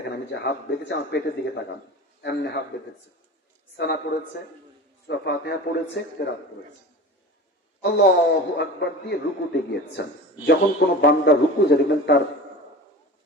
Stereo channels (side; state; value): both; normal; correlation 0.34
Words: আমি যে হাত বেঁধেছি আমার পেটের দিকে তাকান, এমনি হাত বেঁধেছে, সানা পড়েছে, সূরা ফাতিহা পড়েছে, কেরাত পড়েছে, আল্লাহু আকবার দিয়ে রুকুতে গিয়েছেন। যখন কোন বান্দা রুকু যায় দেখবেন তার